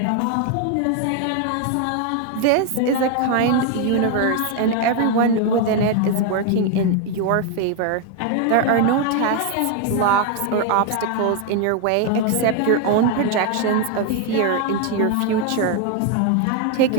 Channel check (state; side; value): different; both; correlation 0.01